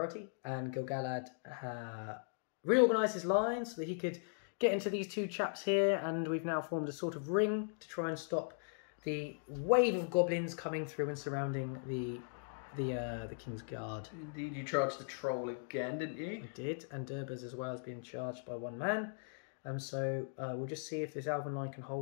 and Gil-galad reorganised his lines so that he could get into these two chaps here, and we've now formed a sort of ring to try and stop the wave of goblins coming through and surrounding the King's Guard. Indeed, you charged the troll again, didn't you? I did, and Durbas as well has been charged by one man. So we'll just see if this Elven line can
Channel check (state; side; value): silent; right; digital silence